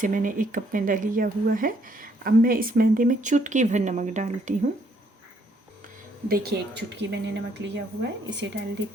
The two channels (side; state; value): both; normal; correlation 0.69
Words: मैंने 1 कप मैदा लिया हुआ है। अब मैं इस मैदे में चुटकी भर नमक डालती हूँ। देखिए, 1 चुटकी मैंने नमक लिया हुआ है, इसे डाल